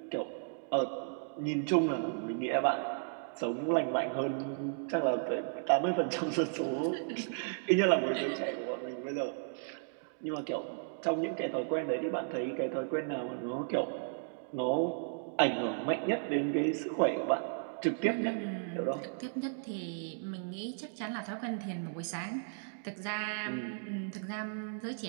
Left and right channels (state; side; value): silent; left; digital silence